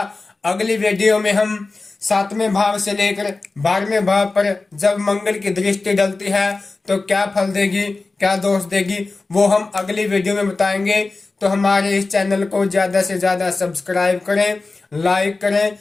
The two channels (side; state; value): right; quieter; 3.6 dB